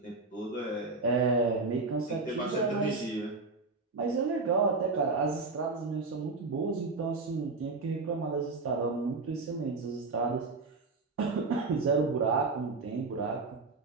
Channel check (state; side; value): quieter; left; 3.8 dB